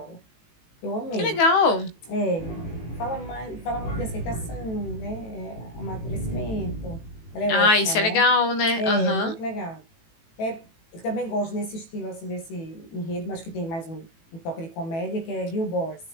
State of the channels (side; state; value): right; late; 18 ms